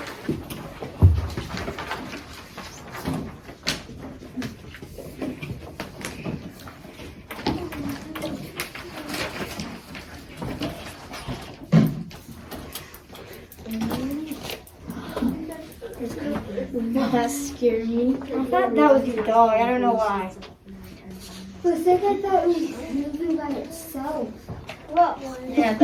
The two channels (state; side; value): identical; both; correlation 1.00